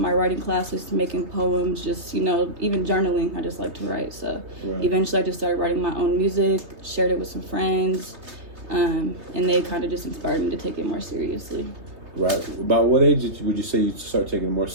writing classes, making poems, just, you know, even journaling. I just like to write. So eventually I just started writing my own music, shared it with some friends, and they kind of just inspired me to take it more seriously. Right. About what age would you say you start taking it more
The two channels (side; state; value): left; late; 3.2 ms